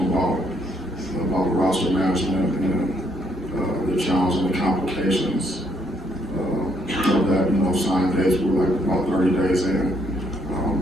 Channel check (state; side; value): normal; both; correlation 0.71